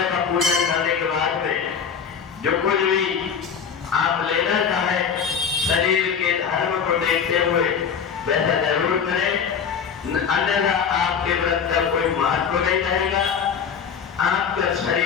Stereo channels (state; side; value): quieter; right; 7.0 dB